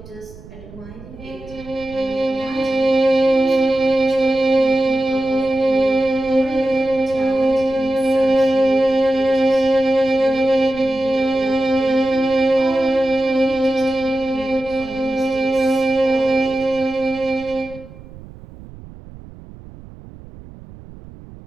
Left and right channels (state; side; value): noise; right; rumble, 18 dB below the sound